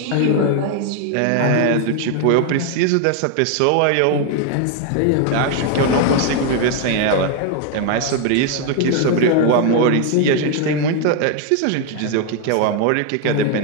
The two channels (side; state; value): both; different; correlation 0.01